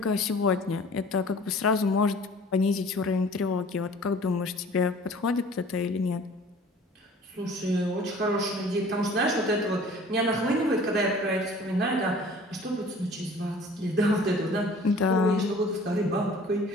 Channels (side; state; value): both; normal; correlation 0.48